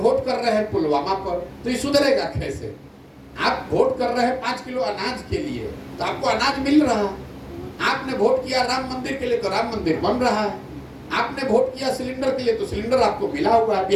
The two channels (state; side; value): identical; both; correlation 1.00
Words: कर रहे हैं पुलवामा पर, तो ये सुधरेगा कैसे? आप वोट कर रहे हैं 5 किलो अनाज के लिए, तो आपको अनाज मिल रहा है। आपने वोट किया राम मंदिर के लिए, तो राम मंदिर बन रहा है। आपने वोट किया सिलेंडर के लिए, तो सिलेंडर आपको मिला हुआ है।